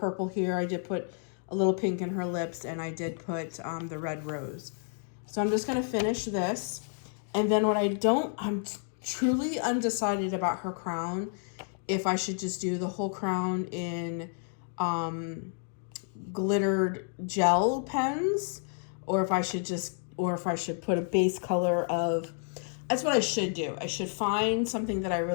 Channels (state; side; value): silent; right; 57 dB below the other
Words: here. I did put a little pink in her lips, and I did put the red rose. So I'm just going to finish this. And then I'm truly undecided about her crown, if I should just do the whole crown in glittered gel pens, or if I should put a base color of, that's what I should do. I should find something that I